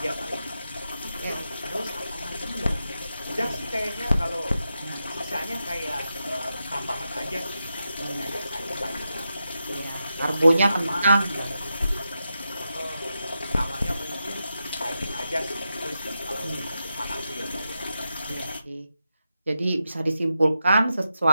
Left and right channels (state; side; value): inverted; both; correlation -0.88